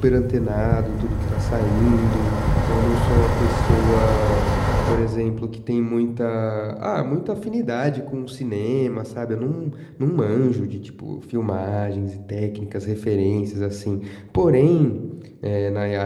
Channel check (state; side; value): identical; both; correlation 1.00